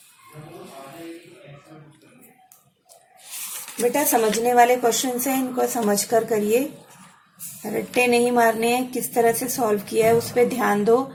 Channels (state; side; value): identical; both; correlation 1.00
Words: बेटा समझने वाले क्वेश्चन है, इनको समझ कर करिए, रट्टे नहीं मारने हैं। किस तरह से सॉल्व किया है उस पर ध्यान दो,